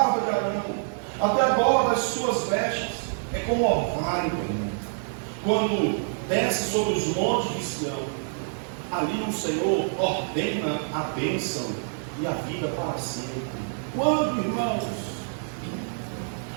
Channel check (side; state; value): left; silent; digital silence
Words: de Arão, até a borda das suas vestes. É como orvalho, quando desce sobre os montes de Sião. Ali o Senhor ordena a bênção e a vida para sempre. Quando, irmãos?